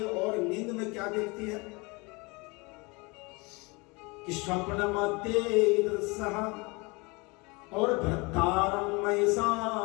और नींद में क्या देखती है कि स्वप्न मध्य दृश्यः और भर्तारं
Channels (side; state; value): right; quieter; 27.2 dB